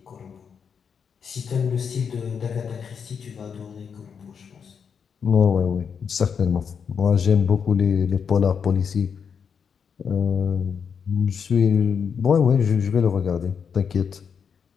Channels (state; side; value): quieter; right; 6.7 dB